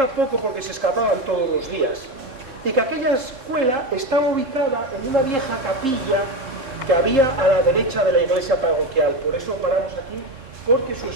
poco porque se escapaban todos los días. Y que aquella escuela estaba ubicada en una vieja capilla que había a la derecha de la iglesia parroquial. Por eso paramos aquí, porque su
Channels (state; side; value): late; left; 3.8 ms